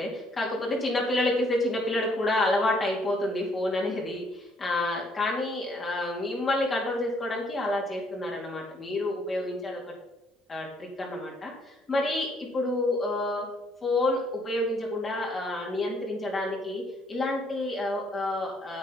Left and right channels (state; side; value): normal; both; correlation 0.67